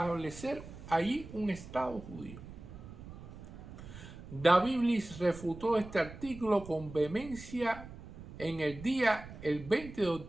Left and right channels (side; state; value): right; noise; rumble, 14 dB below the sound